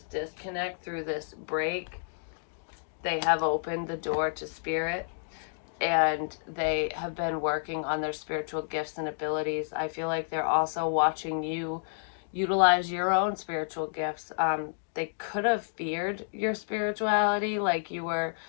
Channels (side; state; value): right; silent; digital silence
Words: disconnect, through this break, they have opened the door to spirit, and they have been working on their spiritual gifts and abilities. I feel like they're also watching you utilize your own spiritual gifts. they could have feared your spirituality. Like you were,